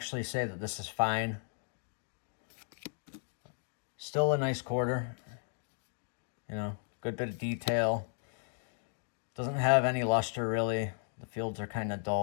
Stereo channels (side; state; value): right; silent; digital silence